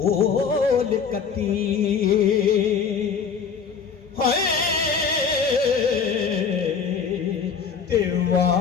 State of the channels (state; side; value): quieter; right; 6.2 dB